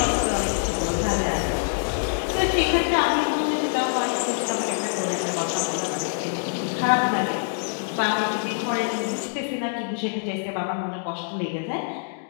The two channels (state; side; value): silent; right; digital silence